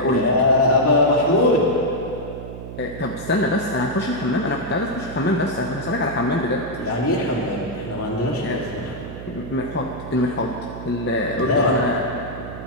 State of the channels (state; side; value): noise; right; hum, 10 dB below the sound